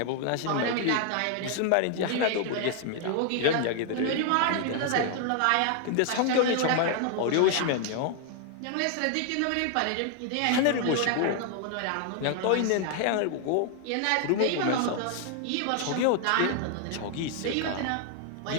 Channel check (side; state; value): both; different; correlation 0.00